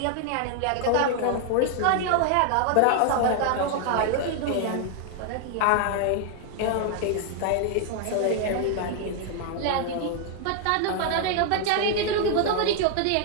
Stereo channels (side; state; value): both; different; correlation 0.00